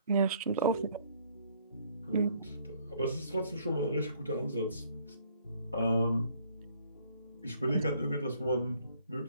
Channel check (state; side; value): inverted; both; correlation -0.63